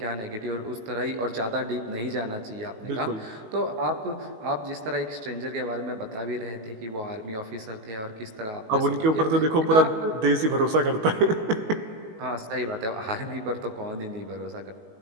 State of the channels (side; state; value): left; late; 19 ms